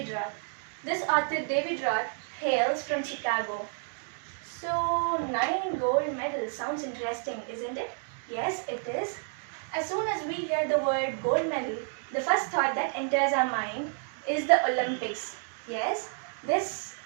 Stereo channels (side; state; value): left; silent; 56 dB below the other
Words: Roth. This author David Roth hails from Chicago. So 9 gold medals sounds interesting, isn't it? Yes, it is. As soon as we hear the word gold medal, the first thought that enters our mind is the Olympics. Yes, this